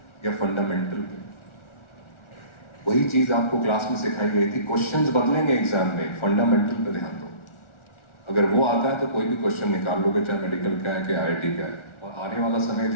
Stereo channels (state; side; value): late; right; 1.4 ms